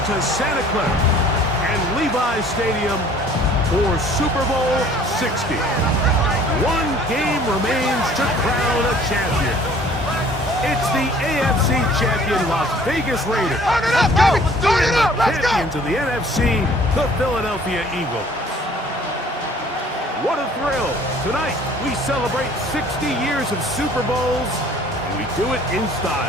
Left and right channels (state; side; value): normal; both; correlation 0.53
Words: Santa Clara and Levi's Stadium for Super Bowl 60. One game remains to crown a champion. It's the AFC champion Las Vegas Raiders. Champions of the NFC, the Philadelphia Eagles. What a thrill. Tonight, we celebrate 60 years of Super Bowls, and we do it in